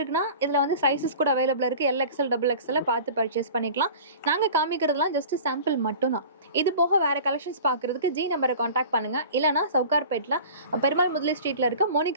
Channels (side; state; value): both; inverted; correlation -0.40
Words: இதில் வந்து சைஸஸ் கூட அவைலபிளாக இருக்குது. எல்எக்ஸ்எல் டபுள் எக்ஸ்எல் பார்த்து பர்ச்சேஸ் பண்ணிக்கலாம். நாங்கள் காமிக்கிறதுலாம் ஜஸ்ட் சாம்பிள் மட்டும் தான். இது போக வேறு கலெக்ஷன்ஸ் பார்க்குறதுக்கு ஜி நம்பரை காண்டாக்ட் பண்ணுங்கள். இல்லைனா சவுகார்பேட்டில் பெருமாள் முதலி ஸ்ட்ரீட்டில் இருக்க